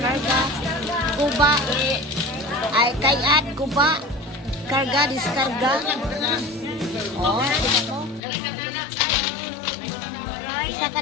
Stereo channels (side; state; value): right; drops out; at 8.2 s